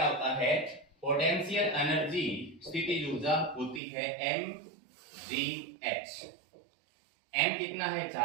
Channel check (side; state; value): left; drops out; at 3.8 s